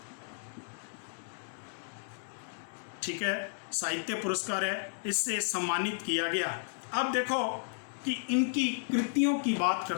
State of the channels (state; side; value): silent; right; digital silence